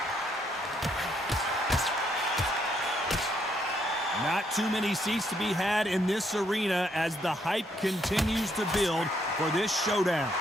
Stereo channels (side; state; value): both; normal; correlation 0.73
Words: Not too many seats to be had in this arena as the hype continues to build for this showdown.